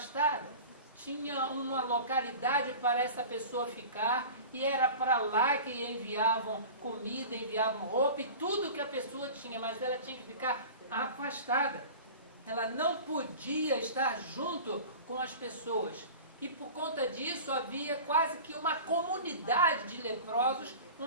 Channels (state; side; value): inverted; both; correlation -0.36